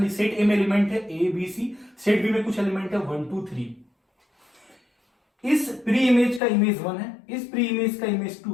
सेट ए में एलिमेंट है A B C, set B में कुछ एलिमेंट है 1 2 3। इस प्री इमेज का इमेज 1 है, इस प्री इमेज का इमेज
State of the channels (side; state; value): right; drops out; at 6.4 s